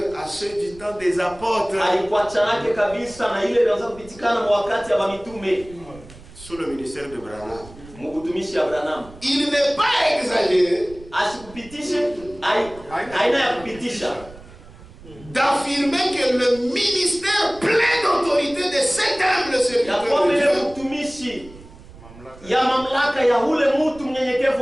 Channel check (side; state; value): right; noise; rumble, 20 dB below the sound